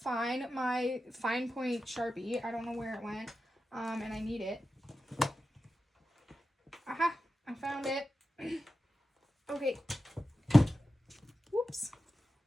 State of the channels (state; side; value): normal; both; correlation 0.92